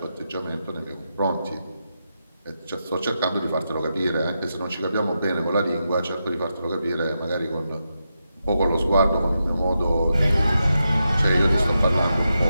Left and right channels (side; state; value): both; inverted; correlation -0.87